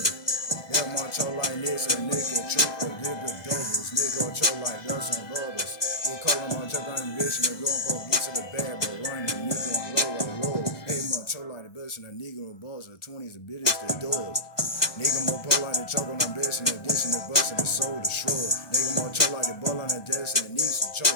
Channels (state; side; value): late; right; 1.5 ms